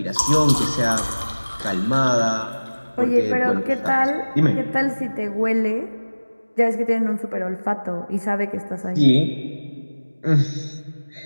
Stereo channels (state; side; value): inverted; both; correlation -1.00